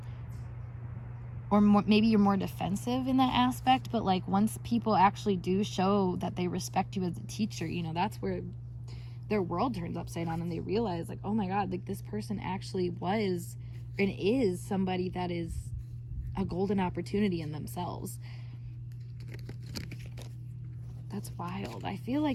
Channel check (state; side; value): identical; both; correlation 1.00